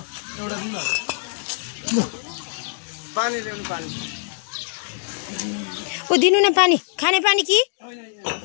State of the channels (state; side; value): silent; right; digital silence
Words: ऊ दिनु न पानी, खाने पानी कि